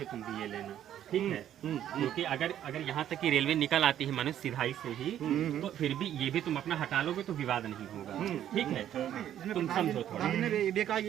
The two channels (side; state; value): left; quieter; 11.0 dB